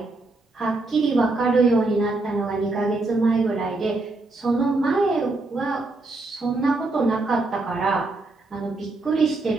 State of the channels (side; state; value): left; quieter; 3.2 dB